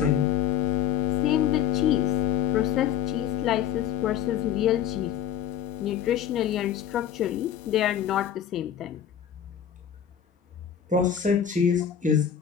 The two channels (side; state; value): right; quieter; 9.5 dB